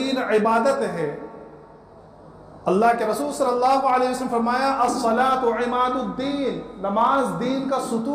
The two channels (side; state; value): both; identical; correlation 1.00